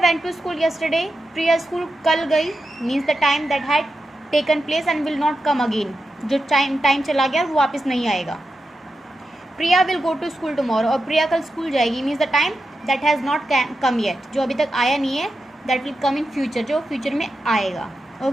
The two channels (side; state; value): both; normal; correlation 0.89